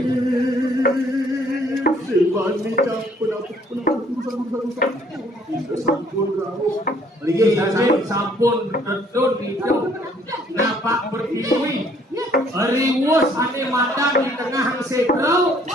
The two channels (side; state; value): both; normal; correlation 0.62